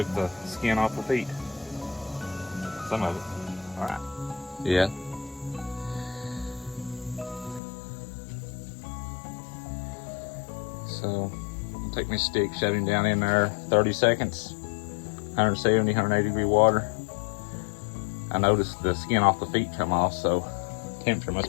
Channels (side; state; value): right; drops out; at 7.6 s